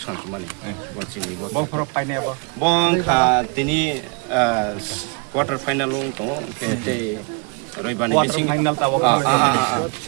mani bo sini bo Bawa farok pai ni apa? bon kha tini quarter final long to ke te roibani Quarter bising final tawo.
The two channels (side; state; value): left; quieter; 32.1 dB